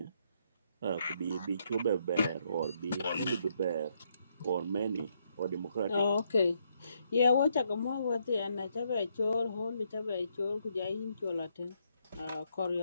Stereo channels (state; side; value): inverted; both; correlation -0.75